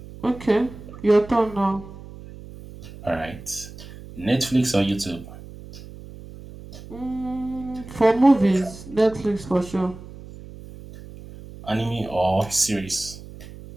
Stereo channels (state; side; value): noise; right; hum, 16 dB below the sound